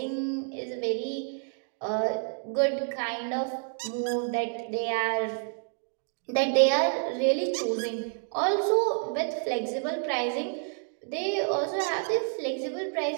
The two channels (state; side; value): silent; left; 56 dB below the other